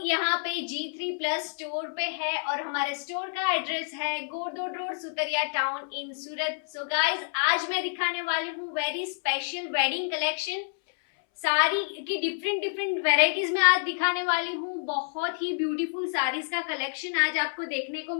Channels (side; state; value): right; silent; 59 dB below the other